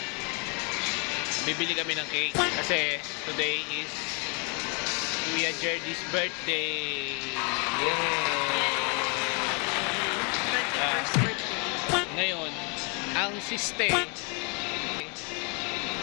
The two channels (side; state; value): right; quieter; 35.0 dB